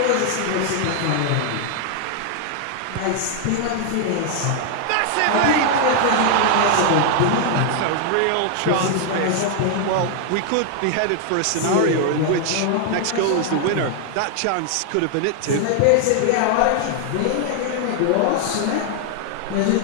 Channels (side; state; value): both; different; correlation 0.00